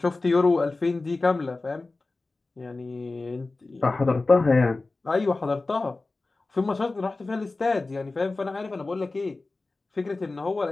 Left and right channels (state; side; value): quieter; right; 3.4 dB